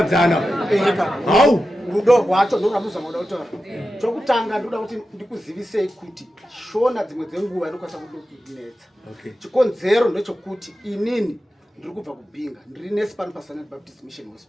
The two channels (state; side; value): normal; both; correlation 0.92